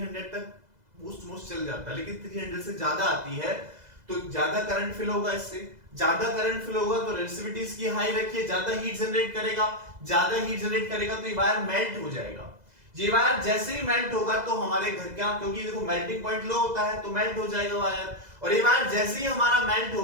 तक मोस्ट चल जाता है, लेकिन 300 से ज्यादा आती है तो ज्यादा करंट फिल होगा, इससे ज्यादा करंट फिल होगा तो रेजिस्टिविटी इसकी हाई रखिए, ज्यादा हीट जनरेट करेगा, ज्यादा हीट जनरेट करेगा तो ये वायर मेल्ट हो जाएगा। ये वायर जैसे ही मेल्ट होगा तो हमारे घर का, क्योंकि देखो मेल्टिंग पॉइंट लो होता है तो मेल्ट हो जाएगा वायर, और ये वायर जैसे ही हमारा मेल्ट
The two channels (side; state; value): left; late; 2.0 ms